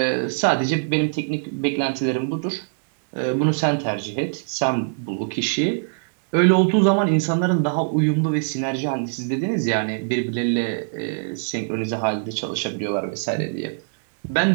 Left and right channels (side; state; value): left; silent; digital silence